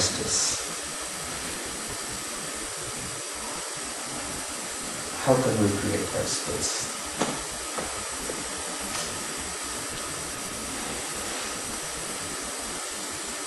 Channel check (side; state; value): both; identical; correlation 1.00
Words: How can we create that space?